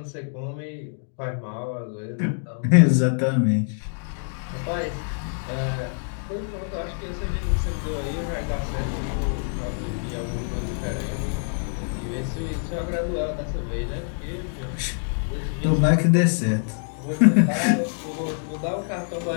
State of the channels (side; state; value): right; silent; 61 dB below the other